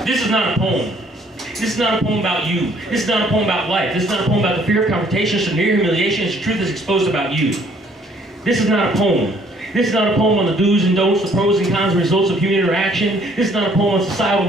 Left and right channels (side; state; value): both; normal; correlation 0.62